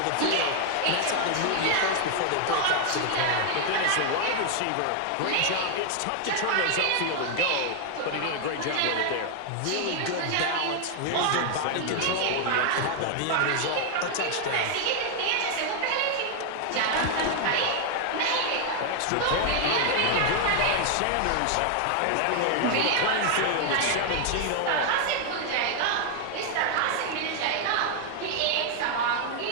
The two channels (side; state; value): both; different; correlation 0.00